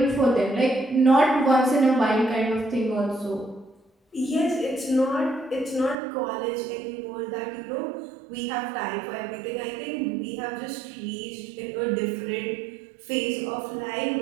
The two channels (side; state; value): left; drops out; at 6.0 s